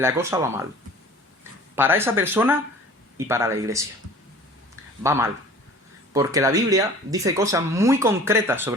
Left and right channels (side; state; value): both; normal; correlation 0.45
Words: cosa va mal. Para esa persona y para la iglesia. Va mal. Porque la Biblia dice cosas muy concretas